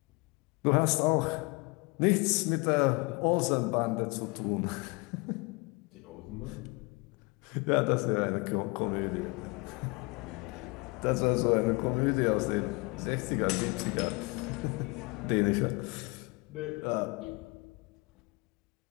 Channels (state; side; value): quieter; right; 27.5 dB